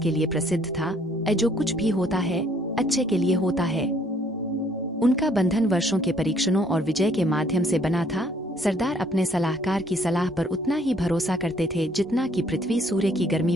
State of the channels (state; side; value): normal; both; correlation 0.63